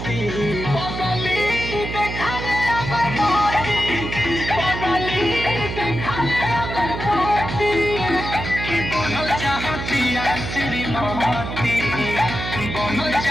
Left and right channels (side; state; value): right; noise; hum, 6 dB below the sound